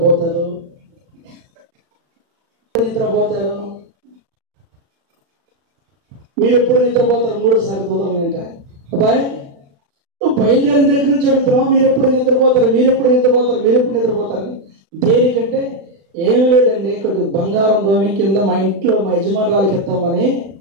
మీరు ఎప్పుడు నిద్రపోతారు? 3 సార్లు దూతమని అంట. అబ్బాయి నువ్వు బయలుదేరిన దగ్గర నుంచి అడుగుతున్నావు, మీరు ఎప్పుడు నిద్రపోతారు? దేనికంటే ఏమి లేదండి, కొద్ది బంగారం దోమి కింద మా ఇంట్లో మా యజమానురాలకి ఇస్తామని.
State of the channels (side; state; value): left; late; 35 ms